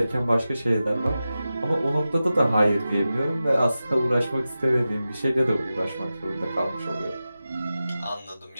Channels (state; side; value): inverted; both; correlation -0.93